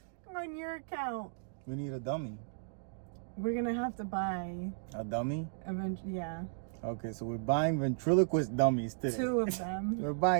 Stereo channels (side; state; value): left; silent; digital silence